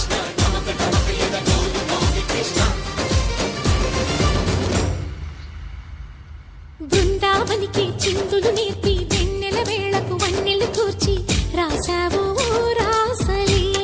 నమక నమక యద డోలు మోగి కృష్ణ. బృందావనికి చిందులు నేర్పి వెన్నెల వేళకు వన్నెలు కూర్చి రాసావు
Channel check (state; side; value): identical; both; correlation 1.00